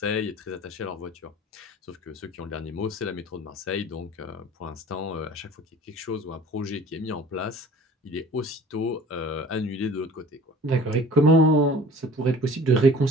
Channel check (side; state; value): both; normal; correlation 0.46